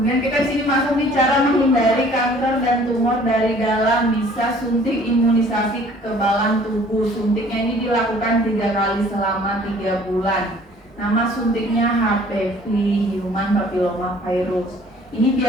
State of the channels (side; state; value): both; normal; correlation 0.54